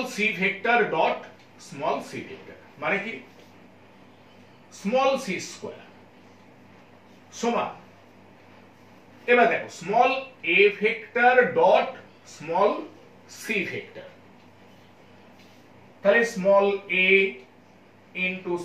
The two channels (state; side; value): identical; both; correlation 1.00